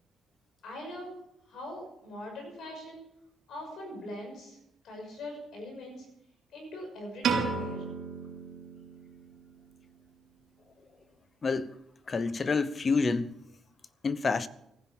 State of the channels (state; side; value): normal; both; correlation 0.79